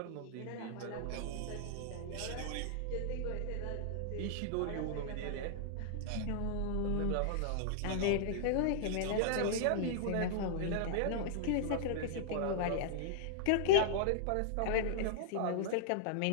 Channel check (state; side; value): different; both; correlation -0.01